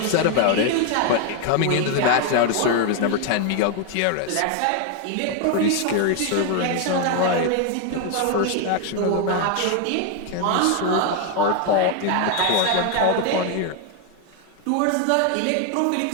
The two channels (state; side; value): different; both; correlation 0.01